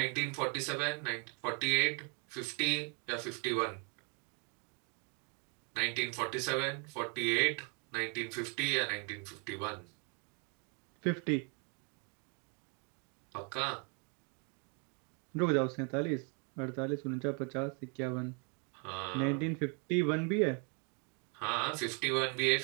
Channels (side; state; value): left; quieter; 36.5 dB